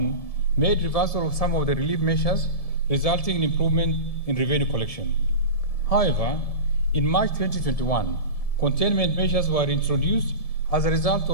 made reversal of some of the relief measures, resulting in improvement in revenue collection. However, in March 2021, containment measures were introduced as a result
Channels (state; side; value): late; right; 1.7 ms